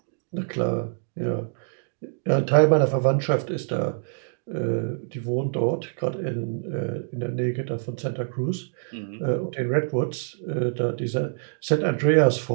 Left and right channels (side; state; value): left; silent; digital silence